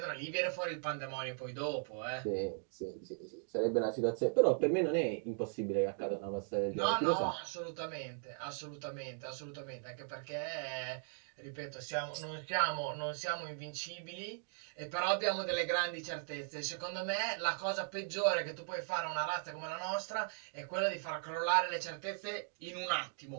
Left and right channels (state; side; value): silent; left; 52 dB below the other